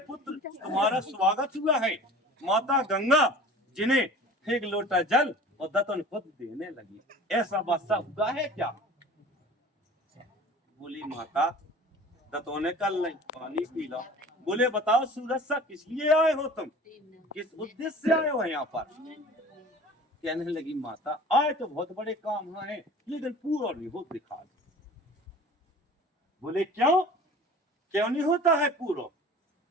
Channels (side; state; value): both; normal; correlation 0.43